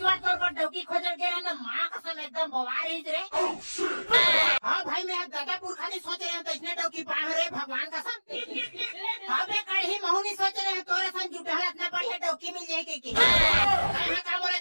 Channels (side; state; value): both; inverted; correlation -1.00